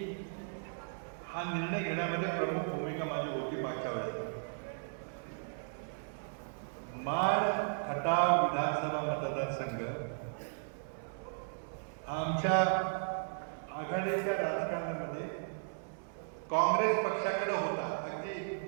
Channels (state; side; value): silent; left; 54 dB below the other